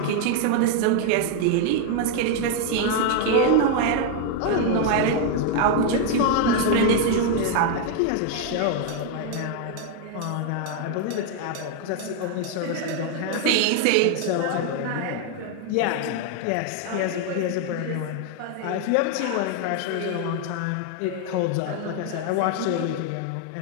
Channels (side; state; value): both; different; correlation 0.00